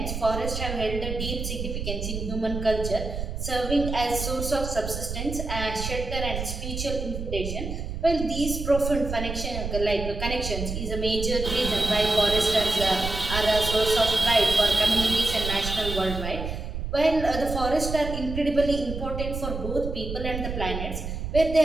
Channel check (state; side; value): noise; right; rumble, 5 dB below the sound